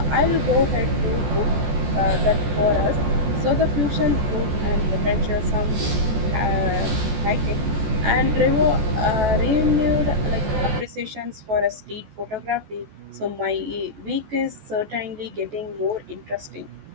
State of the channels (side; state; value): left; late; 14 ms